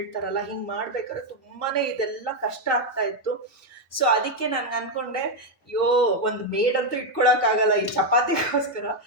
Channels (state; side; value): normal; both; correlation 0.02